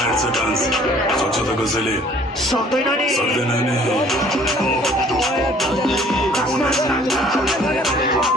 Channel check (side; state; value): both; normal; correlation 0.55